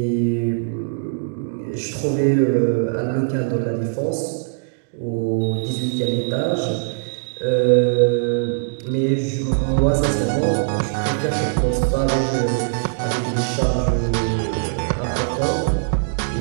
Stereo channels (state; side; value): silent; left; digital silence